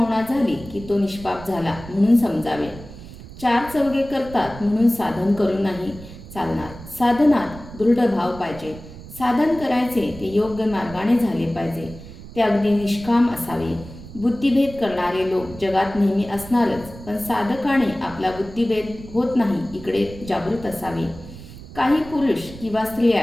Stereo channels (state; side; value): noise; right; rumble, 15 dB below the sound